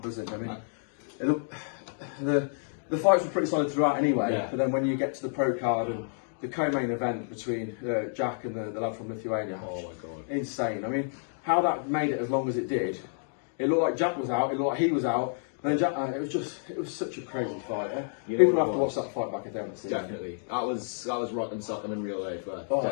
I mean, the fights were pretty solid throughout anyway, but then when you get to the pro card and the co-main event between Jack and the lad from Lithuania, oh my god, insane. I mean, how that made it as long as it did. It looked like Jack was out, it looked like he was out, and then Jack, it was such a crazy fight. People have to watch that fight back if they haven't seen it. Definitely. That was rock and sock in real life. It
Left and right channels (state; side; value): silent; right; digital silence